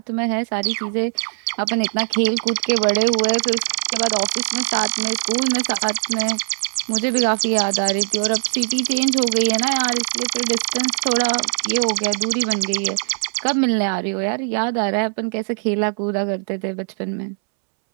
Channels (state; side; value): silent; left; 63 dB below the other